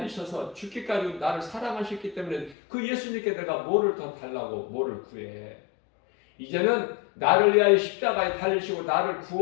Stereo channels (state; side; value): drops out; right; at 2.6 s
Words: 죽기까지 나를 사랑하셨기 때문에 그 예수님께 내가 뭐를 더 달라고 뭐를 구해. 이제는 나를 위하여 십자가에 달리시고 나를